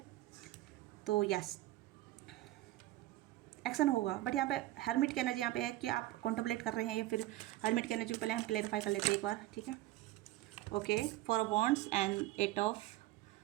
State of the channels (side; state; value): left; quieter; 16.3 dB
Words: तो यस, एक्शन होगा। बट यहाँ पे हर्मिट की एनर्जी यहाँ पे है कि आप कॉन्टेम्पलेट कर रहे हैं या फिर हर्मिट की एनर्जी पहले हम क्लेरिफाई कर लेते हैं एक बार, ठीक है, okay. 4 of wands and 8 of